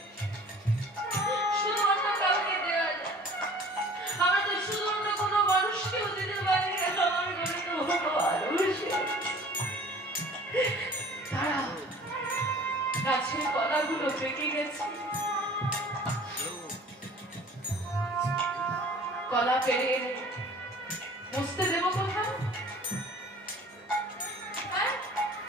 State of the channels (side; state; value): both; normal; correlation 0.48